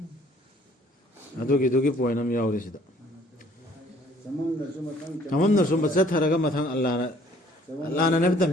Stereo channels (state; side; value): normal; both; correlation 0.58